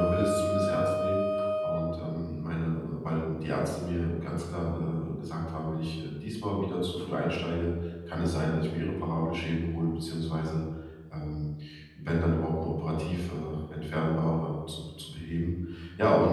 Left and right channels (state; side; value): identical; both; correlation 1.00